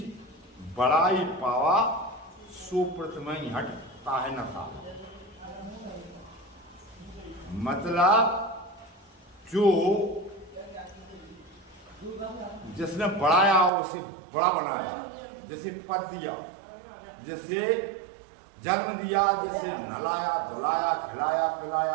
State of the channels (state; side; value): drops out; left; at 13.7 s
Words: बड़ाई पावा सो प्रथमहि हटता है नशा। मतलब जो जिसने बढ़ाया उसे बड़ा बनाया, जैसे पद दिया, जैसे जन्म दिया, जैसे नहलाया धुलाया खिलाया